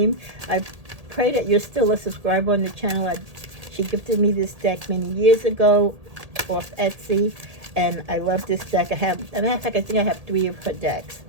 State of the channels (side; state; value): left; late; 1.8 ms